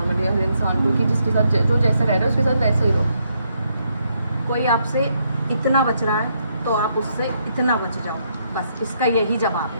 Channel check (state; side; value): inverted; both; correlation -0.75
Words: हर इंसान को कि जिसके साथ जो जैसा रह रहा है उसके साथ वैसा ही रहो। कोई आपसे इतना बच रहा है तो आप उससे इतना बच जाओ, बस इसका यही जवाब